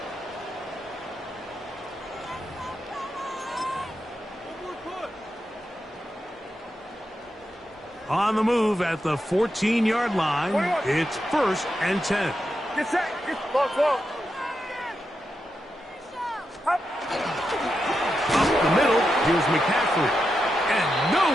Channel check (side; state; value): both; normal; correlation 0.87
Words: On the move at the 14-yard line, it's first and 10. Get set. Get slow. Up the middle, here's McCaffrey. And